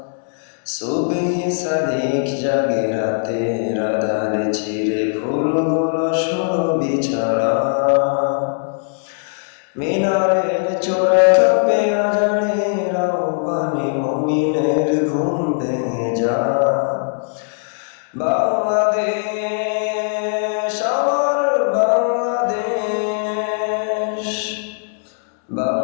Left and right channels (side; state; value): right; silent; 66 dB below the other